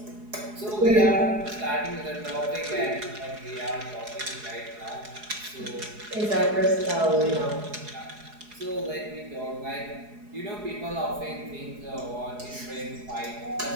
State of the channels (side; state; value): left; late; 4.8 ms